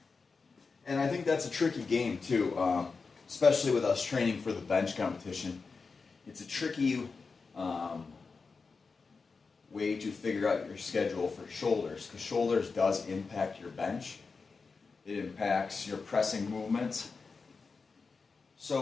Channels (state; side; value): quieter; right; 4.6 dB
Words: think that's a tricky game too, especially with us training for the bench competition. It's a tricky way to figure out your schedule for shoulders, because shoulders does impact your bench. It impacts your pressing movements.